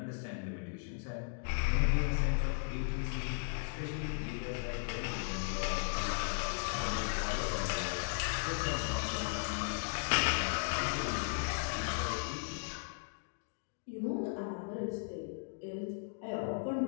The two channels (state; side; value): silent; right; digital silence